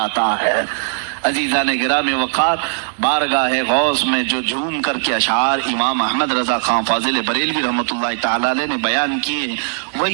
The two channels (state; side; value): silent; left; digital silence